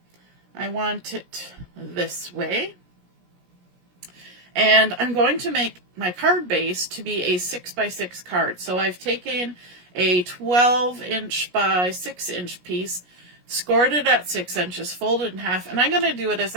I want it this way. And I'm going to make my card base to be a 6x6 card. So I've taken a 12-inch by 6-inch piece, scored it at 6 inches, folded in half, and I'm going to do it as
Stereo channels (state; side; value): late; left; 17 ms